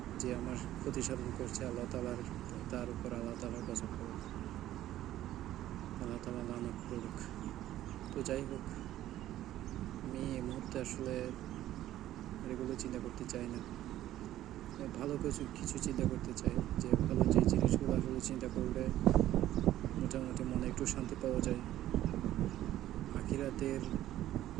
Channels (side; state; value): left; quieter; 13.4 dB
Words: যে আমার ক্ষতি সাধন করছে আল্লাহ তালার, তার উপর আল্লাহ তালার গজব করুক, আল্লাহ তালা লানত করুক। তো যাই হোক, আমি এই মুহূর্তে আসলে এগুলো চিন্তা করতে চাই না। ভালো কিছু চিন্তা করতে চাই, যে ভালো যে জিনিসগুলো আসলে চিন্তা করলে মোটামুটি মনে একটু শান্তি পাওয়া যায়।